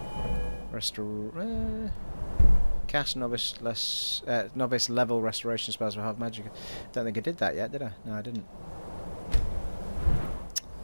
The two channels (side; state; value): both; inverted; correlation -1.00